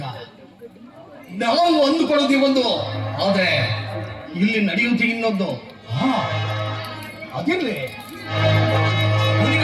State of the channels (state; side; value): identical; both; correlation 1.00